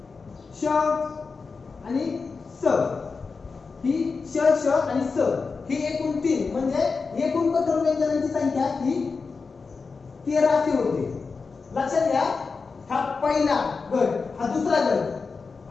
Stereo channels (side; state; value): right; quieter; 4.7 dB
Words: श आणि स. ही श, श आणि स ही एकूण 3 म्हणजे एकूण कठोर व्यंजनांची संख्या ही 13 अशी होते. लक्षात घ्या, हा पहिला गट, हा दुसरा